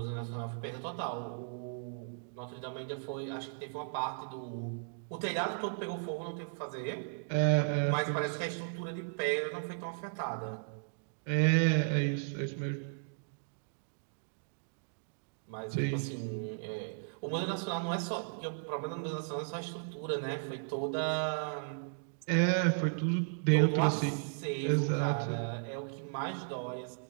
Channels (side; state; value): left; silent; digital silence